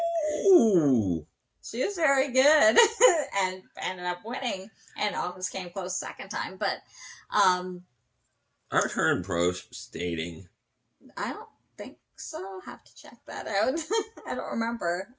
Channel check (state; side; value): identical; both; correlation 1.00